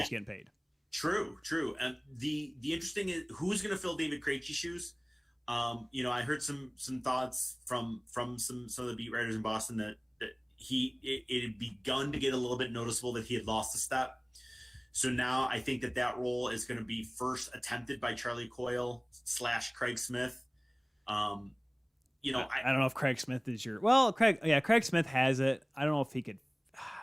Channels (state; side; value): identical; both; correlation 1.00